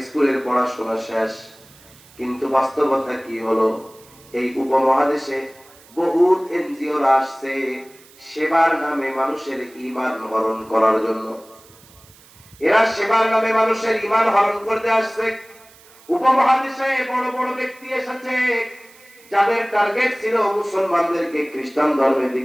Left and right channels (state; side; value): noise; right; hiss, 25 dB below the sound